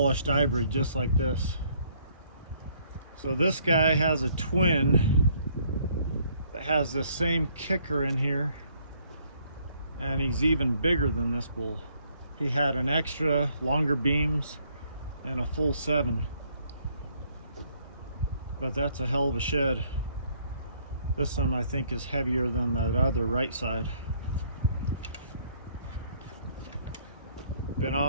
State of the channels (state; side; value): inverted; both; correlation -0.65